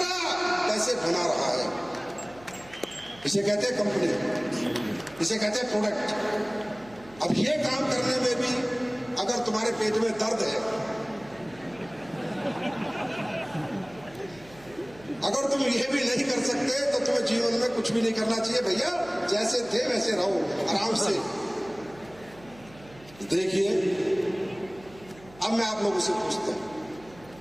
पैसे बना रहा है। इसे कहते हैं कंपनी, इसे कहते हैं प्रोडक्ट। अब ये काम करने में भी अगर तुम्हारे पेट में दर्द है, अगर तुम ये भी नहीं कर सकते तो तुम्हें जीवन में कुछ भी नहीं करना चाहिए भैया। जैसे थे वैसे रहो, आराम से। देखिए, अब मैं आप लोगों से पूछता हूं,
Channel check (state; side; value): noise; right; hum, 22 dB below the sound